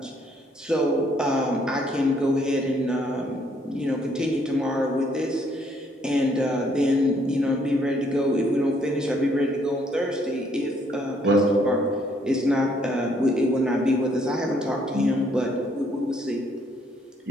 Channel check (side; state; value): both; normal; correlation 0.68